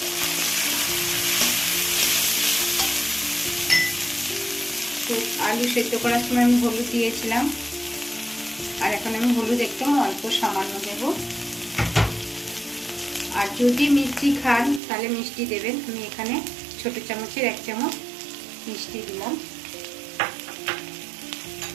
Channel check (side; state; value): left; drops out; at 14.8 s